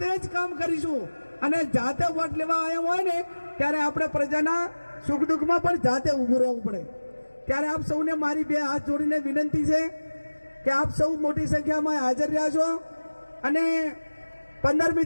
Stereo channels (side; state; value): both; inverted; correlation -1.00